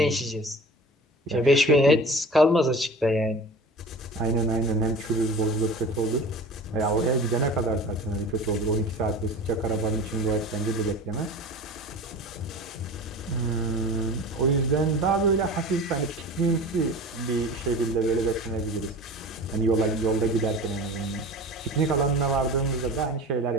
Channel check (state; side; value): normal; both; correlation 0.37